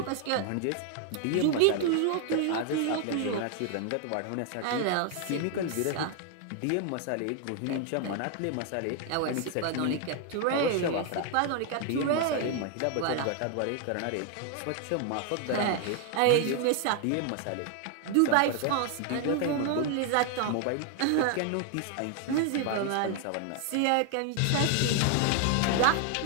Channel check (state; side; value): different; both; correlation 0.00